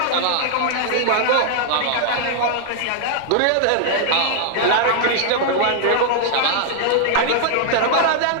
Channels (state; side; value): different; both; correlation -0.01